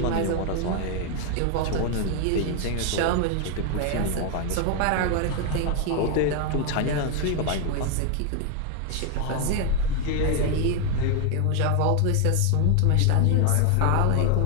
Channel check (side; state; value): both; different; correlation 0.01